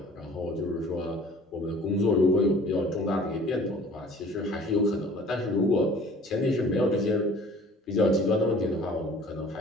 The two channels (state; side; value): normal; both; correlation 0.49